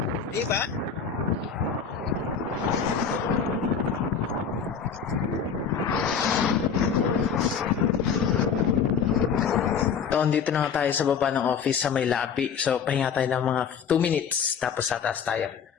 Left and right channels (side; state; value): right; quieter; 6.7 dB